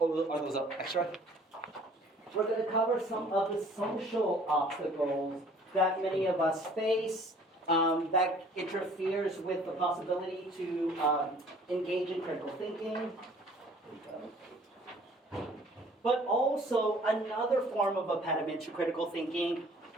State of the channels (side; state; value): both; normal; correlation 0.54